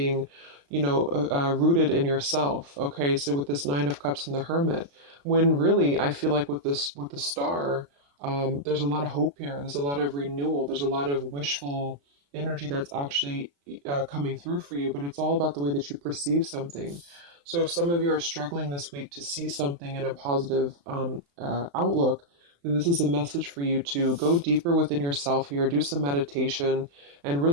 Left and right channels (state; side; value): late; left; 35 ms